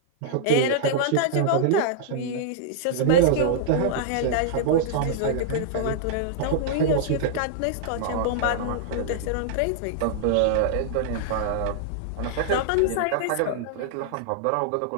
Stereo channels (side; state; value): both; different; correlation -0.01